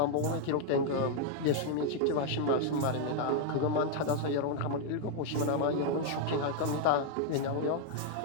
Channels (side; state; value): both; different; correlation -0.01